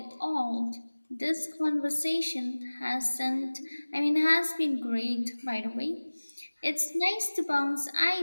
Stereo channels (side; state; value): both; inverted; correlation -1.00